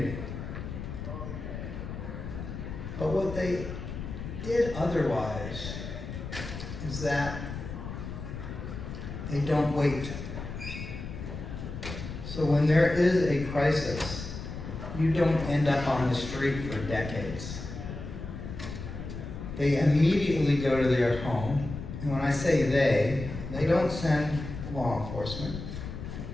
But what they did otherwise is that they don't wait. So when there is a crisis, you don't end up on the street for decades. They immediately go to their home, and when I say they don't send law enforcement,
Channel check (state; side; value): noise; left; rumble, 8 dB below the sound